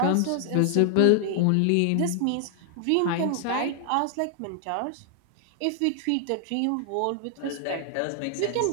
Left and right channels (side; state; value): both; different; correlation 0.00